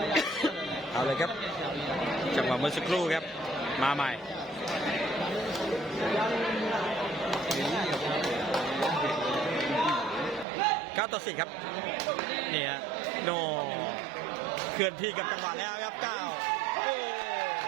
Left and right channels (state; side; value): drops out; left; at 10.5 s